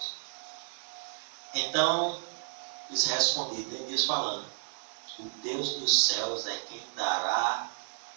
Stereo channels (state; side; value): silent; left; digital silence